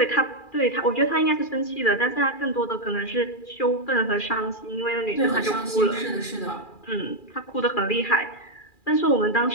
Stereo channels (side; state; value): right; late; 2.4 ms